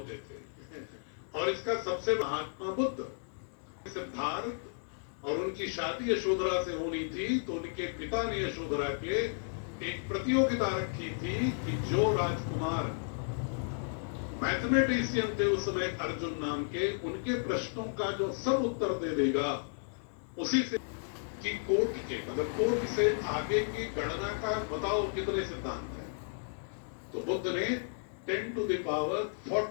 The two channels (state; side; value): silent; right; digital silence